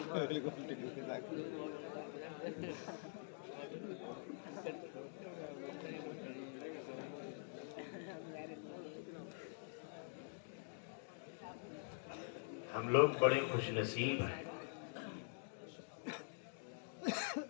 بالکل ہم لوگ بڑے خوش نصیب ہیں،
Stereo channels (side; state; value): right; silent; digital silence